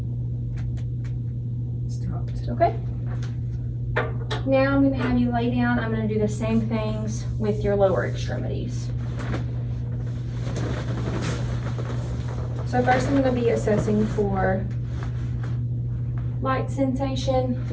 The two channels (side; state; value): both; identical; correlation 1.00